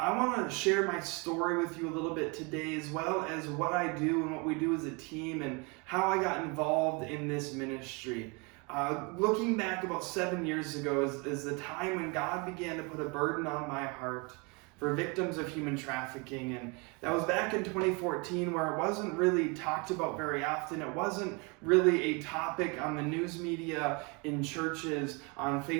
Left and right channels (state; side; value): quieter; left; 30.2 dB